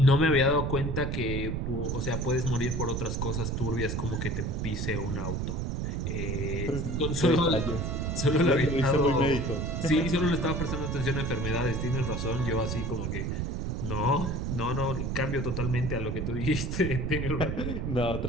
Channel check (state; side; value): noise; right; rumble, 1 dB below the sound